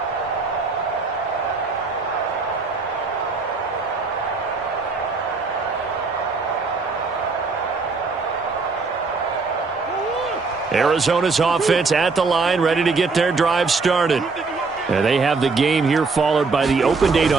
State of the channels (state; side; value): quieter; left; 4.3 dB